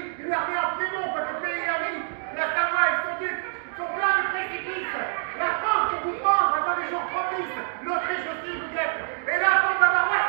une armée en Piémont, petit pays ami. La Savoie et son duc sont pleins de précipices. La France pour vous prendre attend des jours propices. L'Autriche aussi vous guette. Et la bande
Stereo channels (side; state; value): left; silent; digital silence